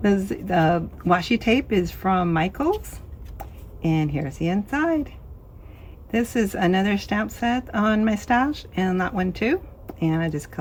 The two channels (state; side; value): identical; both; correlation 1.00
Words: The washi tape is from Michaels, and here's the inside. This is another stamp set on my stash, and that one too. And I just